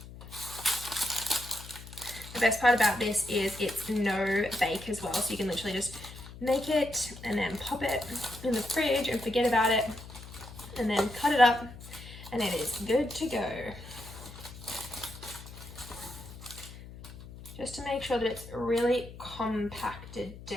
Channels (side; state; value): left; noise; hum, 15 dB below the sound